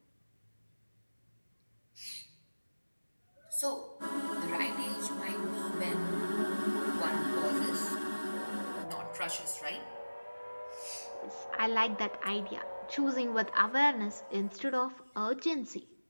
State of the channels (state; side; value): inverted; both; correlation -1.00